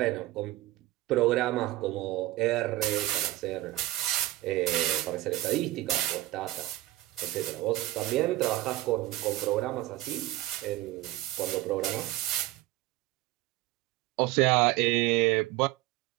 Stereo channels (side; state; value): left; quieter; 17.1 dB